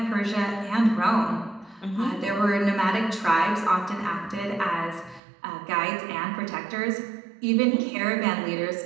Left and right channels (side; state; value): left; drops out; at 5.2 s